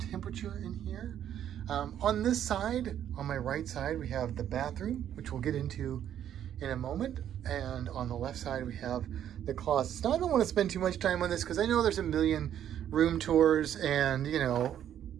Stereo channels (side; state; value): left; quieter; 10.3 dB